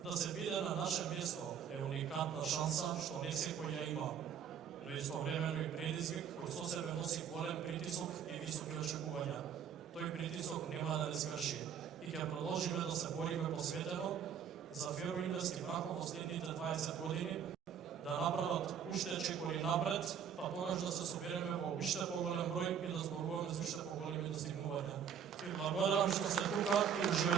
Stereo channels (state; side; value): quieter; left; 8.0 dB